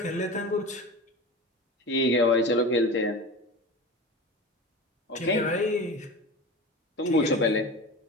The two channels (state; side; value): normal; both; correlation 0.30